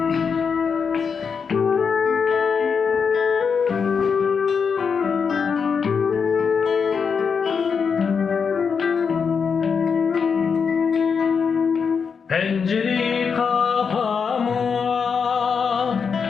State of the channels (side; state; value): right; quieter; 6.0 dB